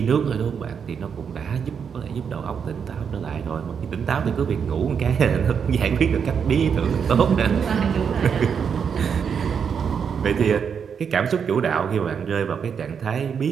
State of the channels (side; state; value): left; quieter; 6.9 dB